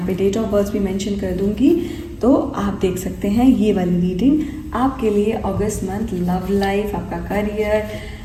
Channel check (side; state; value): both; identical; correlation 1.00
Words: पे डेट ऑफ बर्थ भी मेंशन कर दूँगी, तो आप देख सकते हैं ये वाली रीडिंग आपके लिए अगस्त मंथ, लव लाइफ, आपका करियर,